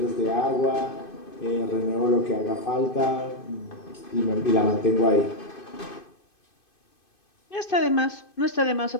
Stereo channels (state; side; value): late; right; 2.5 ms